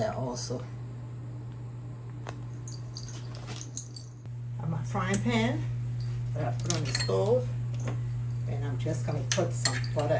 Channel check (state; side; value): identical; both; correlation 1.00